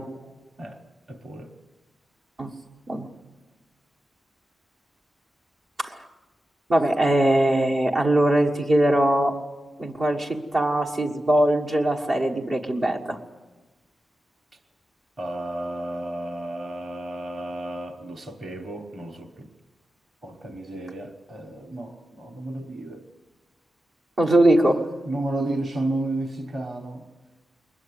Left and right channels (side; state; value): both; normal; correlation 0.92